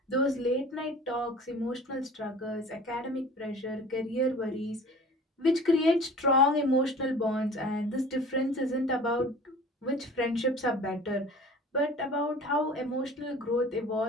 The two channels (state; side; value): normal; both; correlation 0.43